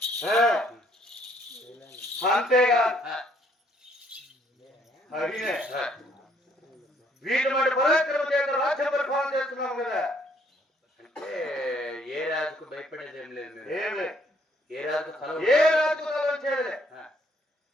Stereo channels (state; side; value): normal; both; correlation 0.66